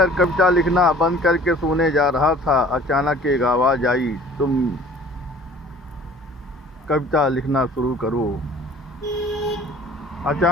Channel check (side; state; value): both; normal; correlation 0.49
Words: कविता लिखना बंद करके सोने जा रहा था। अचानक एक आवाज़ आई, तुम कविता लिखना शुरू करो।